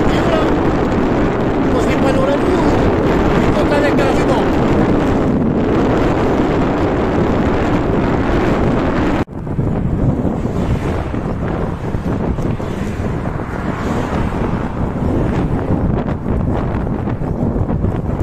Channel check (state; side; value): identical; both; correlation 1.00